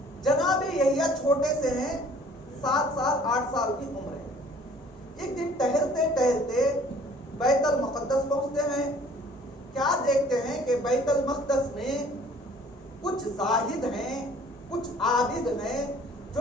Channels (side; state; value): both; normal; correlation 0.53